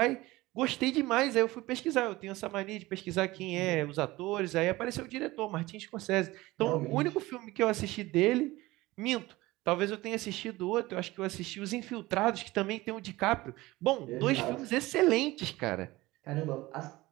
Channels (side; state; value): left; quieter; 19.4 dB